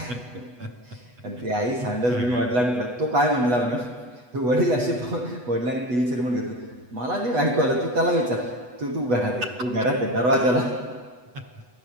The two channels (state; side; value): late; left; 8.1 ms